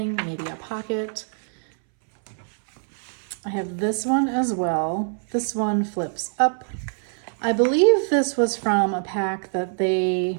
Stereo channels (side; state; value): left; silent; 63 dB below the other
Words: maybe a pocket. I have this one as well. This one flips up. I believe this was from a pack that they